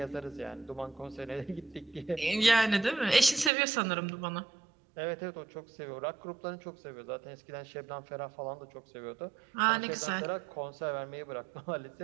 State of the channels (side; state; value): left; drops out; at 3.5 s